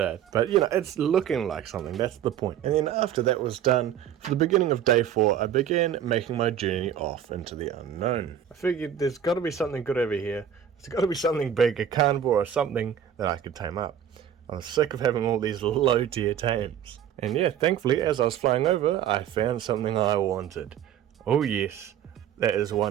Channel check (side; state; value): left; quieter; 9.4 dB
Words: it. But you know, it's looking like something. That's the point. And then after that was done, for the beginning of day 4, I began making my journey off into the unknown. I figured there's got to be something good over here. There's got to be something big, a carnivore or something that I could tame up. I was sick of having all these low tier tames. And yeah, thankfully, as I was flying over, I found something I wanted. Oh yes, that is